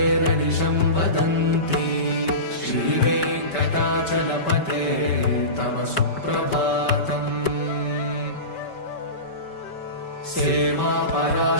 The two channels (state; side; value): late; right; 5.2 ms